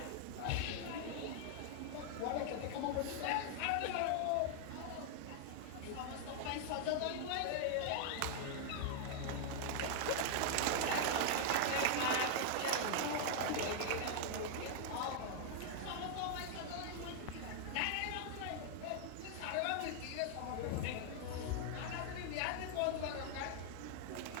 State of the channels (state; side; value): different; both; correlation 0.00